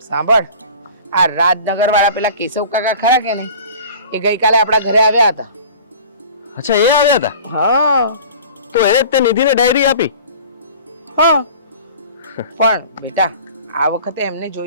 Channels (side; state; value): both; inverted; correlation -0.43